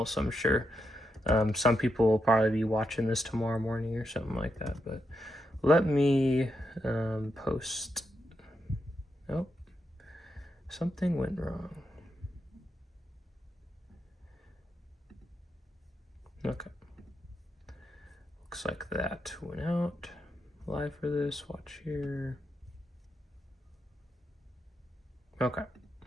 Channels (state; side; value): normal; both; correlation 0.84